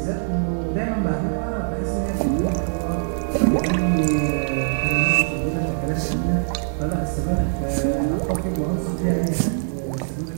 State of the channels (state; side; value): silent; left; digital silence